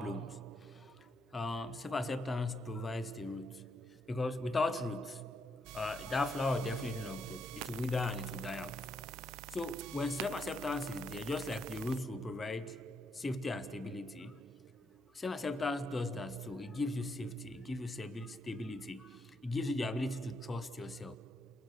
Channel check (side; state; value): both; normal; correlation 0.77